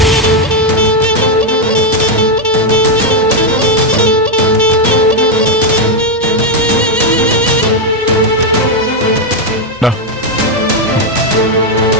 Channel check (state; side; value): normal; both; correlation 0.03